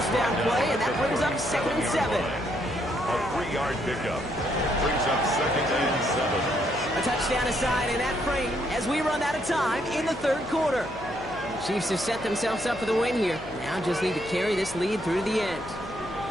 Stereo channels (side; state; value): left; noise; hum, 17 dB below the sound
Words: down play, and that brings up 2nd and 7. A 3-yard pickup brings up 2nd and 7. A touchdown aside in that frame as we run out of time in the 3rd quarter. Chiefs have set themselves up for the win here. Now just need to carry this lead through to the end.